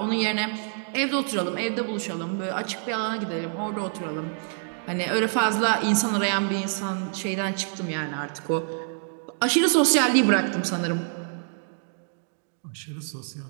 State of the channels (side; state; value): left; silent; 61 dB below the other